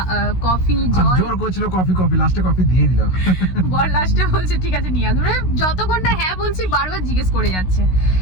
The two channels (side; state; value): right; late; 16 ms